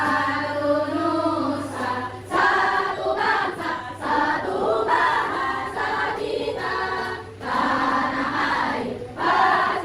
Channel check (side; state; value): both; identical; correlation 1.00